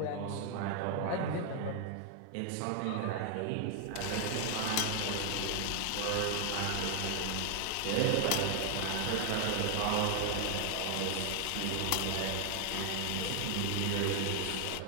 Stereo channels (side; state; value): both; different; correlation 0.00